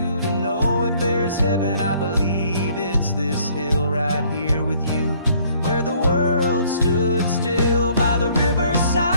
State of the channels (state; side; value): inverted; both; correlation -0.61